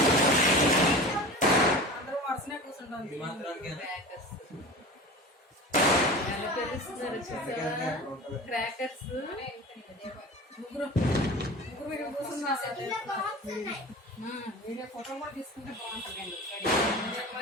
క్రాకర్స్ ముగ్గురు వీడియో ఫోటో కూడా తీసుకుంటే బాగుంటుంది.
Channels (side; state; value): both; normal; correlation 0.35